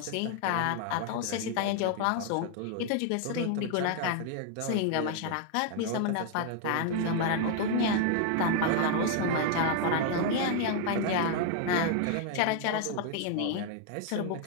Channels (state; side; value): different; both; correlation 0.00